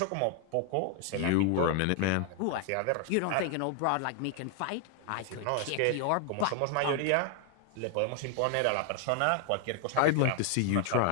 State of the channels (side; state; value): both; different; correlation 0.00